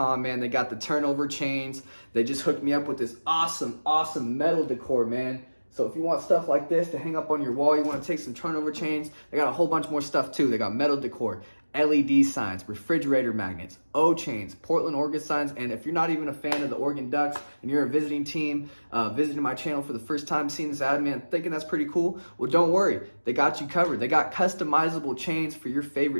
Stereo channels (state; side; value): inverted; both; correlation -1.00